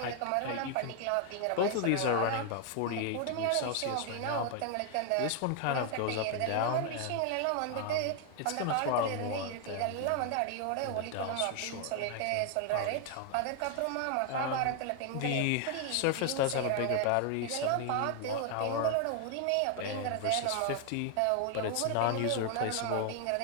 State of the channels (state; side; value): different; both; correlation 0.00